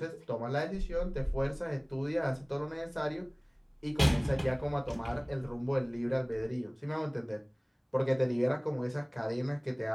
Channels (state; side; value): identical; both; correlation 1.00